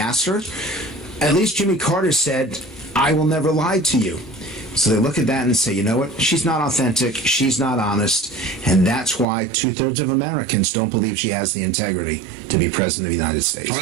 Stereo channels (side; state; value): left; drops out; at 9.2 s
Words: her, at least Jimmy Carter said, I will never lie to you. So they look at that and say, you know what? She's not authentic. She's not honest. And that's why 2/3 of Americans don't believe she has the integrity to be president of the United States. All